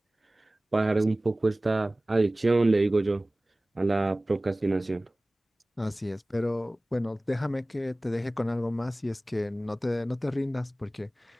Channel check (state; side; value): normal; both; correlation 0.98